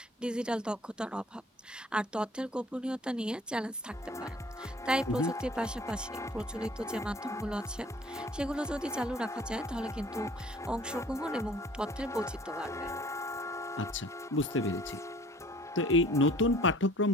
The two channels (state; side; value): normal; both; correlation 0.52